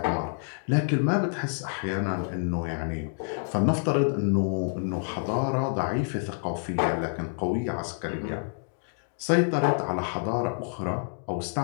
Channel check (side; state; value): right; silent; digital silence